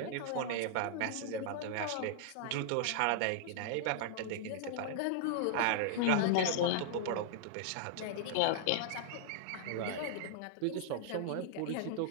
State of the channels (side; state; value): both; different; correlation -0.01